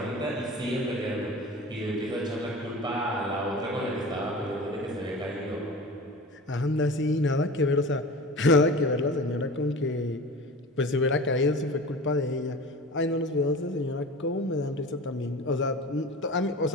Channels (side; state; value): both; normal; correlation 0.35